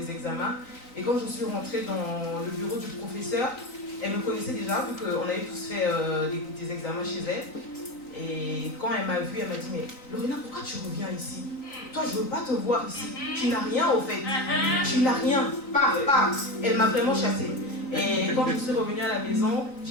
examens. Et quand je suis rentrée dans le bureau du professeur, elle me connaissait déjà, vu qu'on avait tous fait des examens chez elle. Et quand elle m'a vue, elle m'a dit, mais Lorena, pourquoi tu reviens ici? Toi, je ne veux pas te voir ici. Tu n'as rien au fait. Tu n'as rien. Pas. Elle m'a vraiment chassée. Et quand je suis revenue à la maison,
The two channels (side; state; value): right; late; 3.9 ms